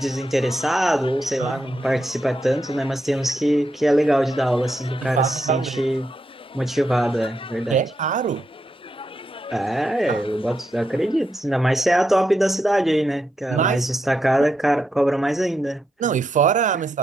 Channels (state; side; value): normal; both; correlation 0.83